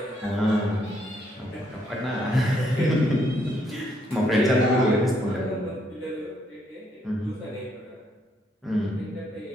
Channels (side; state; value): both; normal; correlation 0.72